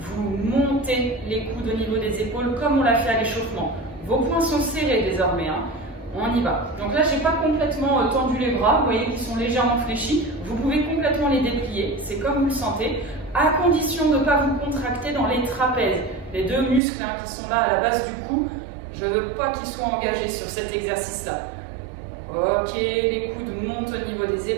montez les coudes au niveau des épaules comme on l'a fait à l'échauffement. Vos poings sont serrés désormais, hein. On y va. Donc là, je n'ai pas complètement tendu les bras, vous voyez qu'ils sont légèrement fléchis. Vous pouvez complètement les déplier, c'est comme vous le sentez, à condition de ne pas vous contracter dans les trapèzes. Les deux muscles hein, qui sont là à la base du cou, je ne veux pas qu'ils soient engagés sur cet exercice-là. Ok, les coudes montent au niveau des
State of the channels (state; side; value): drops out; left; at 16.8 s